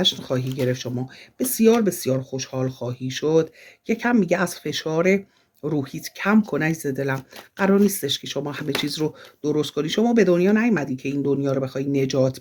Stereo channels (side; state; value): both; identical; correlation 1.00